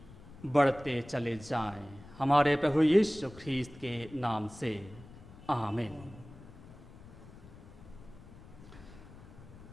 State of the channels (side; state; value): left; noise; rumble, 18 dB below the sound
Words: बढ़ते चले जाएं। हमारे प्रभु यीशु ख्रीस्त के नाम से आमीन।